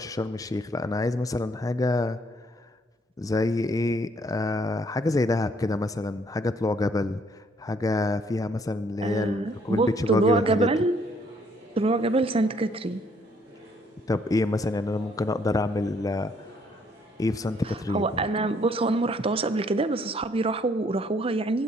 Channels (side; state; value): both; normal; correlation 0.66